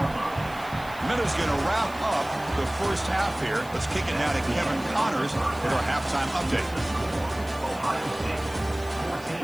Miller's going to wrap up the first half here. Let's kick it now to Kevin Connors for our halftime update.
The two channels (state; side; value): noise; left; hiss, 20 dB below the sound